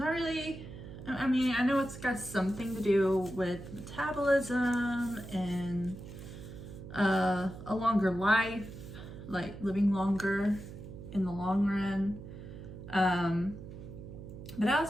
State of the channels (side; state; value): right; noise; hum, 12 dB below the sound